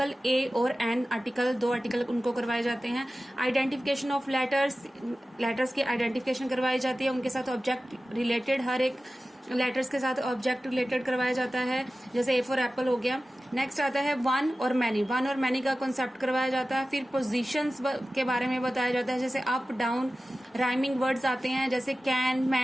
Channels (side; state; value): both; normal; correlation 0.95